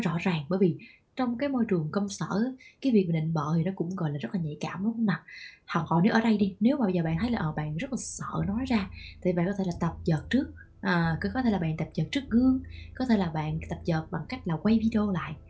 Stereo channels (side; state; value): both; identical; correlation 1.00